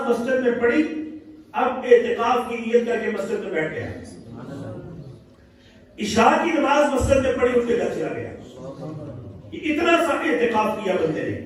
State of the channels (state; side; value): identical; both; correlation 1.00